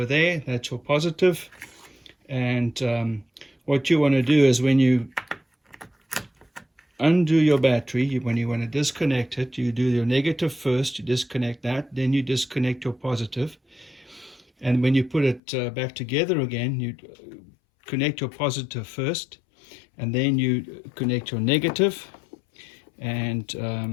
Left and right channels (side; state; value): right; drops out; at 15.4 s